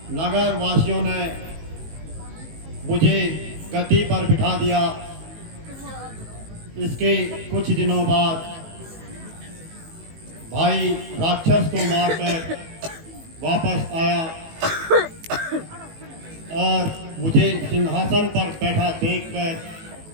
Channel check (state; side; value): late; left; 18 ms